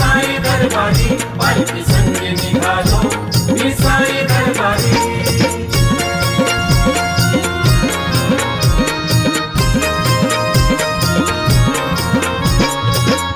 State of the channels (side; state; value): both; identical; correlation 1.00